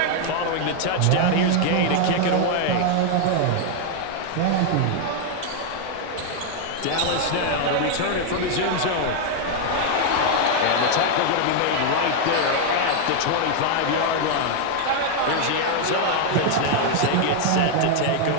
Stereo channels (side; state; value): both; different; correlation 0.00